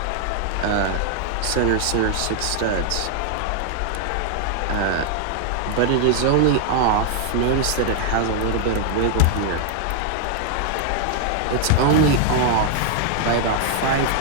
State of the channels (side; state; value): both; different; correlation 0.00